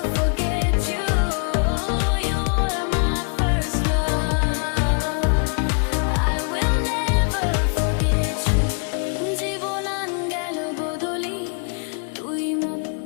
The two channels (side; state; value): right; quieter; 39.5 dB